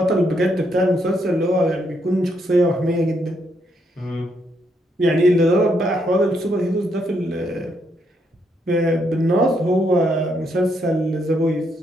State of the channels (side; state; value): both; normal; correlation 0.76